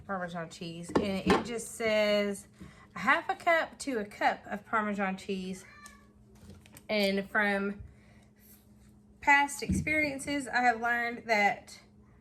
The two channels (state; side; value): identical; both; correlation 1.00